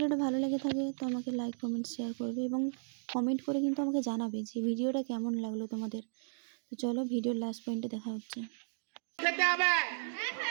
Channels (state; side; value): silent; left; digital silence